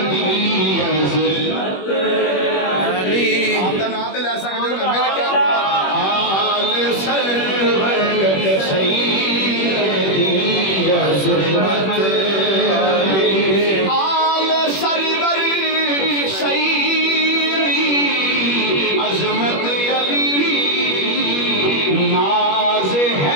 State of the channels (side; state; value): right; late; 21 ms